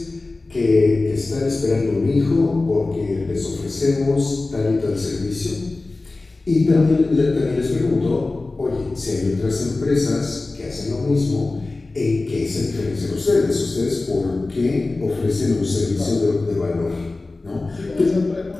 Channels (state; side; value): quieter; right; 3.3 dB